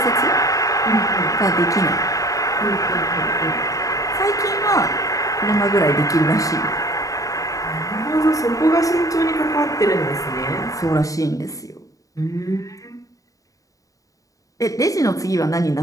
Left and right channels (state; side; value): late; right; 0.16 ms